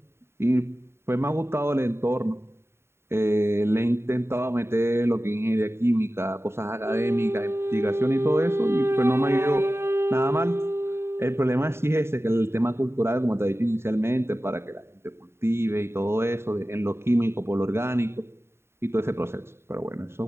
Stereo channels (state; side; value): late; left; 0.12 ms